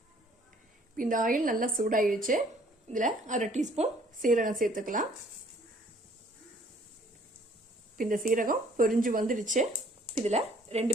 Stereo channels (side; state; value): both; normal; correlation 0.59